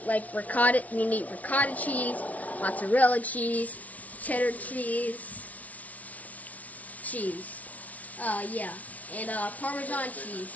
like ricotta. You need ricotta cheese, mozzarella cheese, cheddar cheese, yeah, and Parmesan cheese.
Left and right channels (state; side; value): late; right; 0.070 ms